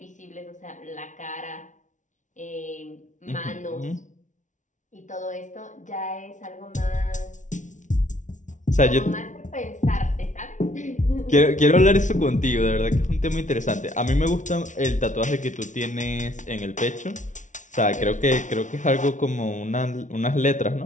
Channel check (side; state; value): right; late; 0.37 ms